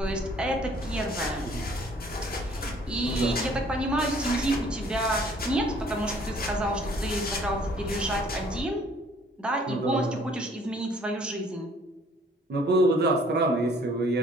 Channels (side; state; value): both; normal; correlation 0.58